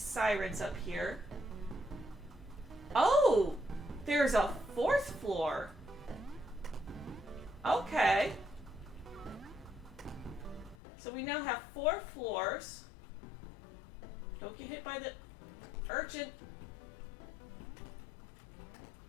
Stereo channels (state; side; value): drops out; right; at 10.8 s